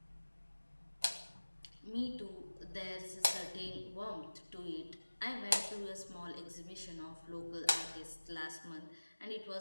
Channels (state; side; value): inverted; both; correlation -1.00